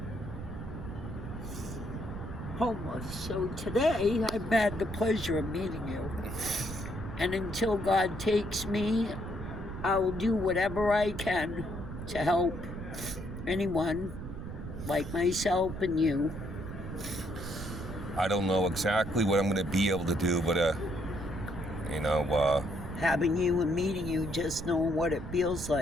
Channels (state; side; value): noise; right; rumble, 8 dB below the sound